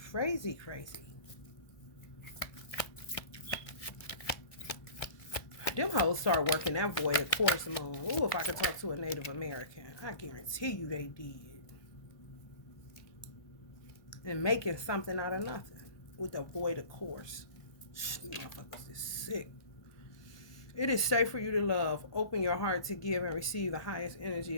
crazy, crazy. Them hoes start working that void of course moon. Ooh, if I could talk to a Native American, I guarantee you they did. And making something out of nothing with the void of course. Motherfuckers is sick. It is safe for you to love. Open your heart to give and receive the highest energy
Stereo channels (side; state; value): right; late; 1.2 ms